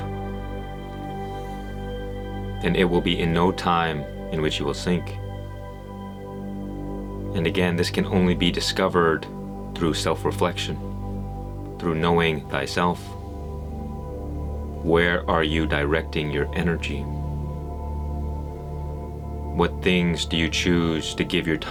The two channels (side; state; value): both; identical; correlation 1.00